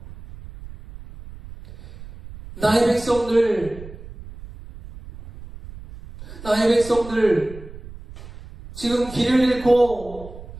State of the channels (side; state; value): right; noise; rumble, 16 dB below the sound